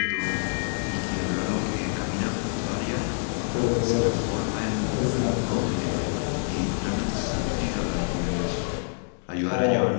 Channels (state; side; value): silent; right; 61 dB below the other